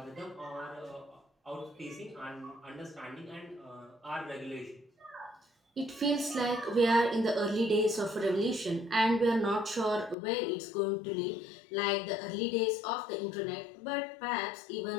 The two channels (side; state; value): right; drops out; at 10.2 s